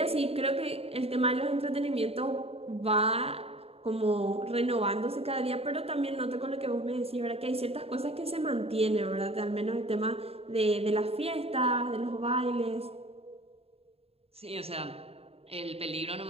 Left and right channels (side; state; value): left; late; 0.29 ms